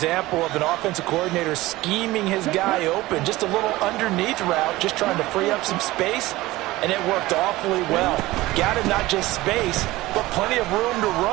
of an offensive coordinator scheming his guy open. Just a little underneath route, just trying to free up some space, and it worked awfully well. Got him not just space, but plenty of room to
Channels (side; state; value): left; quieter; 18.4 dB